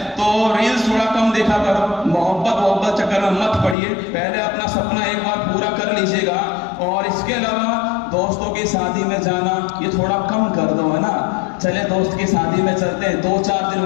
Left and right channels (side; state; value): right; drops out; at 3.8 s